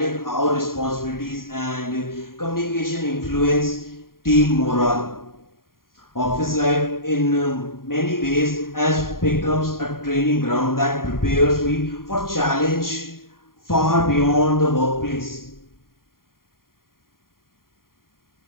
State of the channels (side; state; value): right; late; 0.91 ms